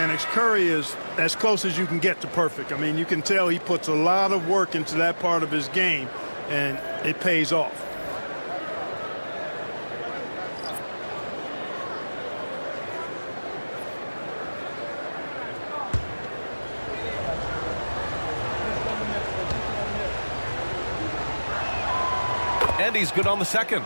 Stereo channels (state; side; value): inverted; both; correlation -1.00